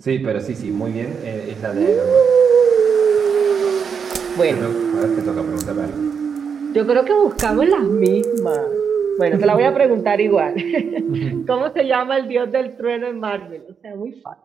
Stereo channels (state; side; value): quieter; left; 6.5 dB